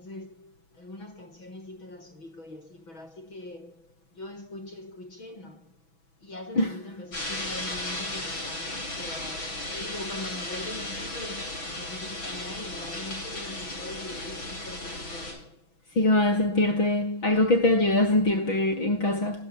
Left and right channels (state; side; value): late; right; 6.1 ms